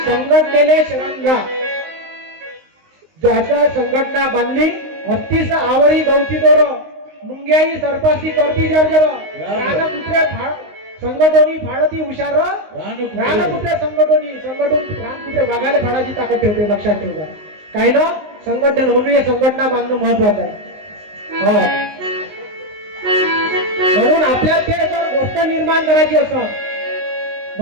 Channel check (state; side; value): late; left; 19 ms